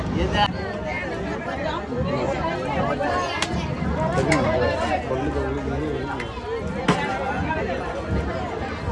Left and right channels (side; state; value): both; identical; correlation 1.00